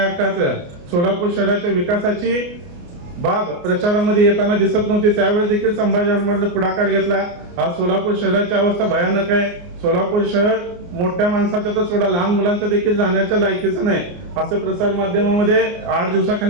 हक्काचं, सोलापूर शहराच्या विकासाची बाब प्रचारामध्ये येताना दिसत नव्हती. त्यावेळेस देखील संभाजी आरमारने पुढाकार घेतला. आज सोलापूर शहराची अवस्था भयानक आहे. सोलापूर शहर मोठ्या माणसाच्या तर सोडा लहान मुलांच्या देखील जाण्याच्या लायकीचं नाही असं प्रसार माध्यमामध्ये 8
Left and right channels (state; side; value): late; left; 29 ms